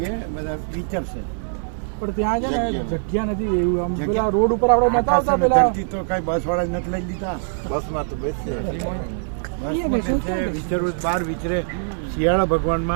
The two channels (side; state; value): left; silent; 64 dB below the other